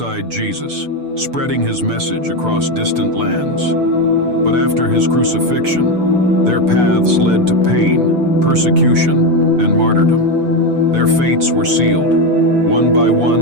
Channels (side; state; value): left; late; 6.8 ms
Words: Jesus, spreading his message across distant lands. But after his crucifixion, their paths led to pain, persecution, and martyrdom. Their fates were sealed. One by